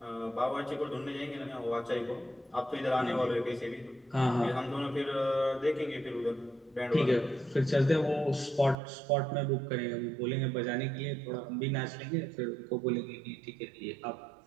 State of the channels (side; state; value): left; drops out; at 8.8 s